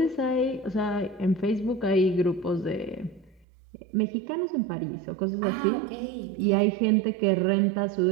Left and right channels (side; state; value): left; drops out; at 3.5 s